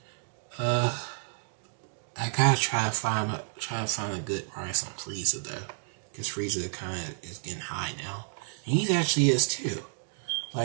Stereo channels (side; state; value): left; silent; digital silence